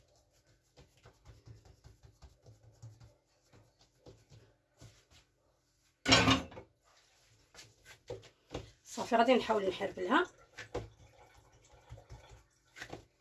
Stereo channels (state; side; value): identical; both; correlation 1.00